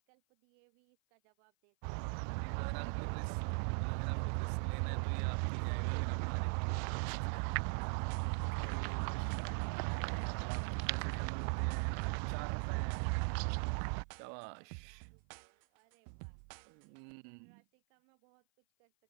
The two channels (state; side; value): silent; left; 51 dB below the other